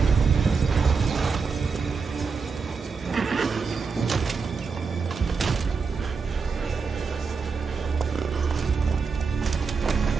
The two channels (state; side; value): quieter; left; 5.1 dB